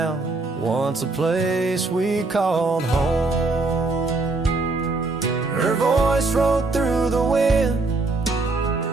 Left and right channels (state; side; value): quieter; left; 3.4 dB